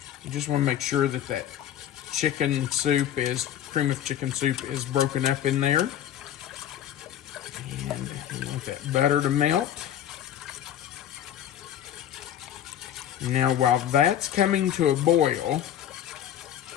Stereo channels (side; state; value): right; quieter; 10.8 dB